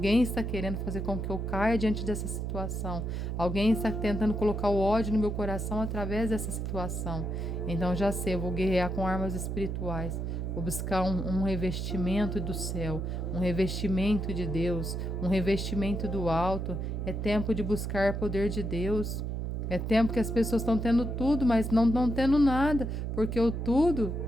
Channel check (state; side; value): noise; right; hum, 3 dB below the sound